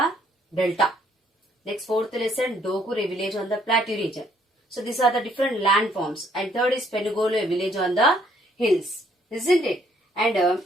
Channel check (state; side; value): normal; both; correlation 0.66